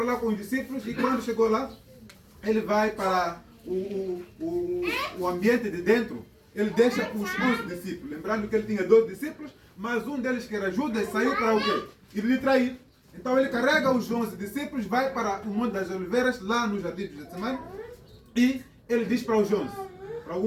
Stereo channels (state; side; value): identical; both; correlation 1.00